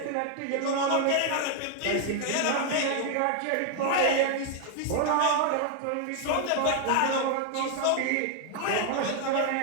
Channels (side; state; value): both; different; correlation 0.00